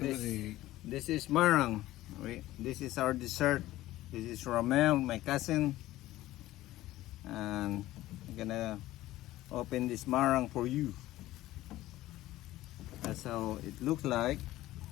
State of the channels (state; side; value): quieter; right; 15.9 dB